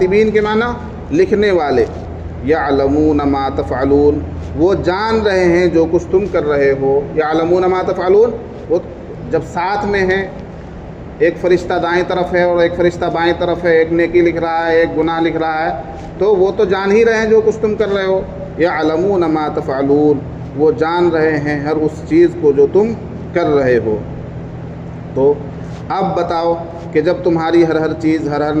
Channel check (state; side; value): identical; both; correlation 1.00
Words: کے معنی لکھنے والے۔ یعلمون ما تفعلون، وہ جان رہے ہیں جو کچھ تم کر رہے ہو۔ یعلمون ما تفعلون، وہ جب ساتھ میں ہیں، ایک فرشتہ دائیں طرف ہے اور ایک فرشتہ بائیں طرف ہے، ایک نیکی لکھ رہا ہے، ایک گناہ لکھ رہا ہے، تو وہ تو جان ہی رہے ہیں جو کچھ تم کر رہے ہو۔ یعلمون ما تفعلون، وہ جان رہے ہیں ہر اس چیز کو جو تم کر رہے ہو۔ تو اب بتاؤ کہ جب تمہاری ہر چیز، ہر